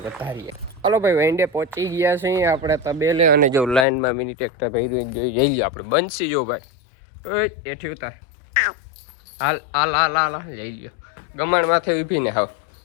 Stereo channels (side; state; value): right; drops out; at 3.9 s